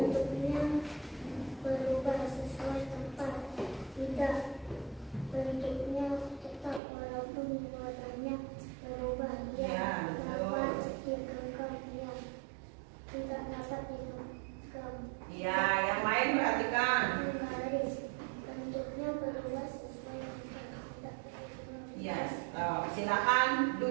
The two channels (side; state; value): left; drops out; at 6.8 s